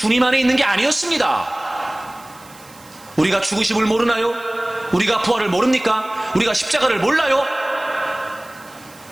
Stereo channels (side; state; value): right; noise; hiss, 24 dB below the sound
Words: 안에 있는 게 아니었습니다. 우리가 죽으심을 모르나요? 우리가 부활을 모릅니까? 우리가 십자가를 몰라요?